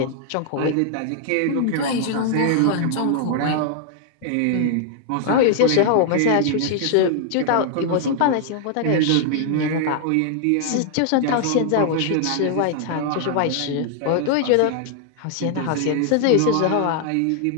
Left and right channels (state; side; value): different; both; correlation 0.00